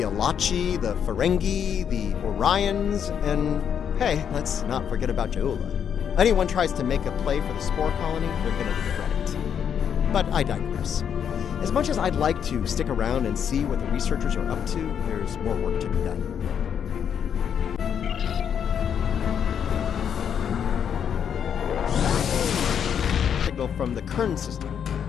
Alachi, the Ferengi, the Orions, and hey, let's not forget about Ja'ula. Anyone tries to make a play for the spore colony, they're gonna regret it. But I digress. As much as I'd like to stick around and see what the researchers are up to, there's more work to be done. Signal from the Kern system.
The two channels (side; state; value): right; quieter; 8.2 dB